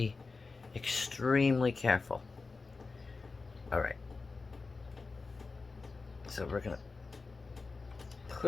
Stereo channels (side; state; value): right; quieter; 4.1 dB